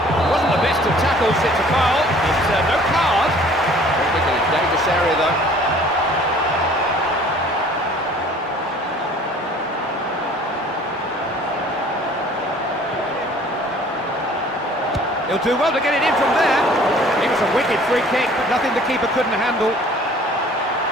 wasn't the best of tackles. It's a foul. It's no card. I think in a dangerous area though. He'll do well to get it in from there. It was a wicked free kick, but nothing the keeper couldn't handle.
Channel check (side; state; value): both; normal; correlation 0.52